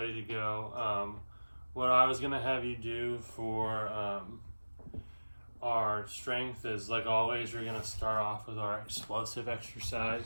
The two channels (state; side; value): inverted; both; correlation -1.00